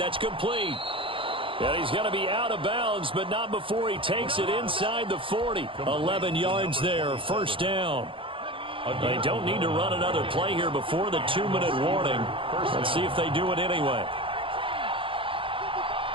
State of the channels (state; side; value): late; left; 0.25 ms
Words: complete. And he's going to be out of bounds, but not before he takes it inside the 40. 11 yards there, first down. They don't need to run another play here before the 2-minute warning. Let's see if they do it anyway.